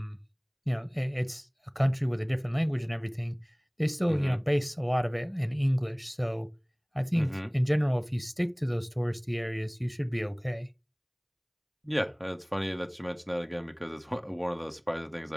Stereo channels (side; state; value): both; identical; correlation 1.00